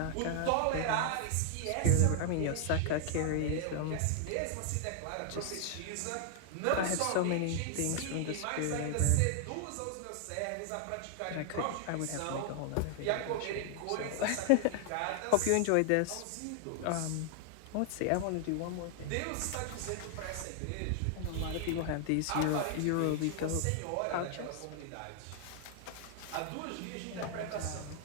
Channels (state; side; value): different; both; correlation 0.00